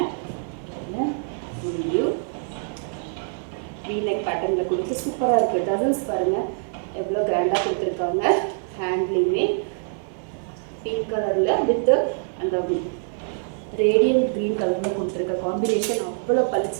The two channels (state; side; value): silent; left; digital silence